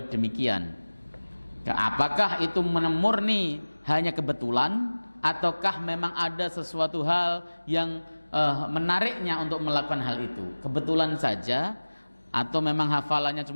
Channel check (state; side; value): inverted; both; correlation -1.00